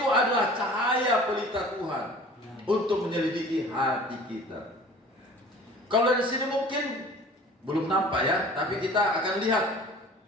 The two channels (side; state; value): both; normal; correlation 0.45